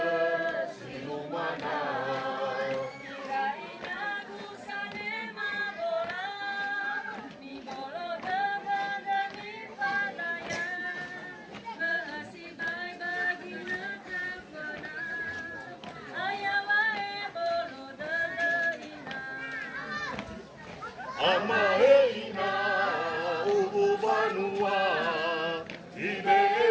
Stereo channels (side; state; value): both; identical; correlation 1.00